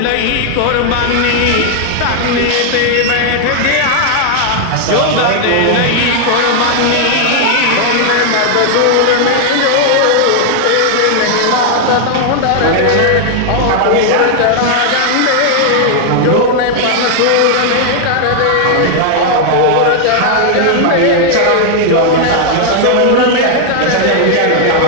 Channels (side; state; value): both; different; correlation 0.00